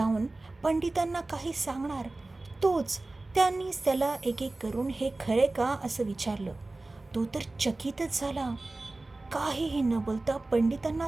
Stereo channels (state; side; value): quieter; left; 3.0 dB